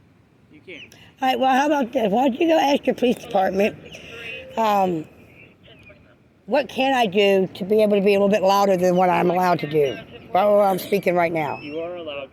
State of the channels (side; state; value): both; identical; correlation 1.00